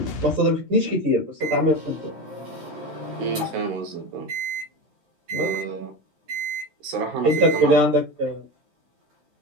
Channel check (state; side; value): late; left; 13 ms